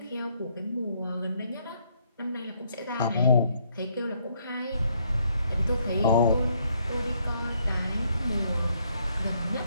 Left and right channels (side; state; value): both; inverted; correlation -0.71